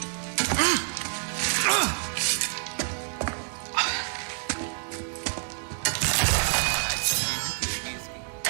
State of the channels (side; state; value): left; silent; 58 dB below the other